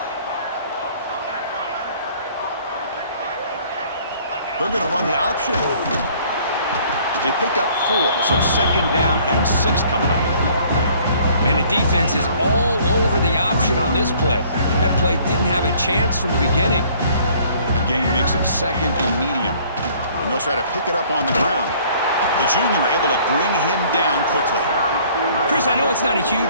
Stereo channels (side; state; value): both; inverted; correlation -0.57